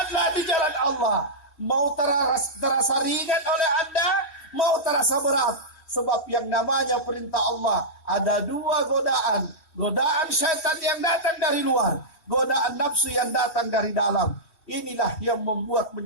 di jalan Allah. Mau terasa ringan oleh Anda, mau terasa berat. Sebab yang namanya perintah Allah ada dua godaan. Godaan syaitan yang datang dari luar, godaan nafsu yang datang dari dalam. Inilah yang membuat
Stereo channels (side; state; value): right; late; 2.7 ms